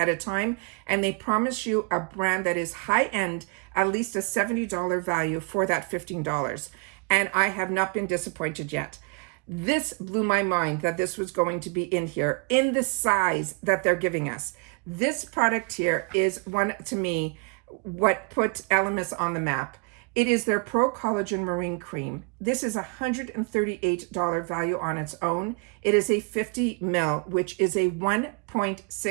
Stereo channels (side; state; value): left; quieter; 34.0 dB